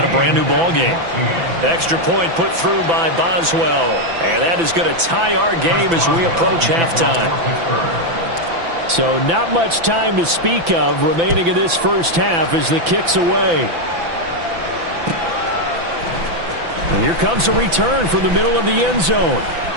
a brand new ball game. Extra point put through by Boswell. And that is going to tie our game as we approach halftime. So not much time to speak of remaining in this first half as the kick's away. And here comes a return from the middle of the end zone.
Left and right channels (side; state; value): left; late; 6.0 ms